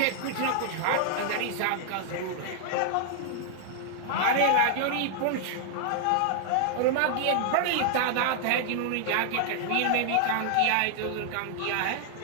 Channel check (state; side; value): different; both; correlation 0.00